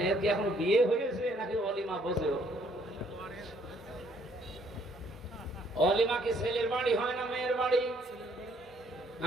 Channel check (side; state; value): both; normal; correlation 0.65